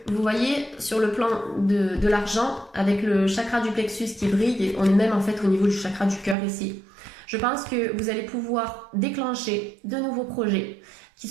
vous voyez sur le plan de l'argent, avec le chakra du plexus qui brille, on est même en fait au niveau du chakra du cœur ici. Je pense que vous allez pouvoir déclencher de nouveaux projets qui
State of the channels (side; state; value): left; drops out; at 6.4 s